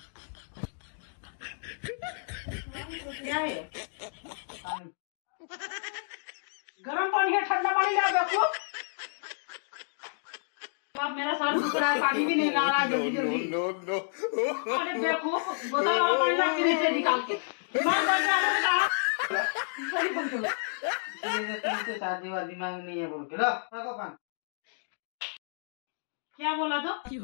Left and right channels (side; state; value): right; silent; digital silence